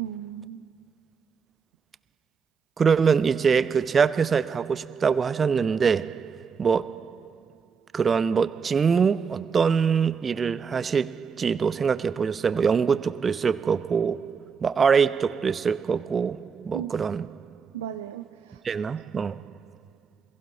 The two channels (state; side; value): quieter; left; 5.9 dB